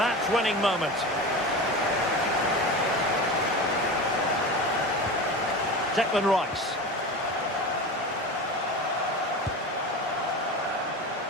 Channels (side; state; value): both; normal; correlation 0.28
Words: moment? Declan Rice.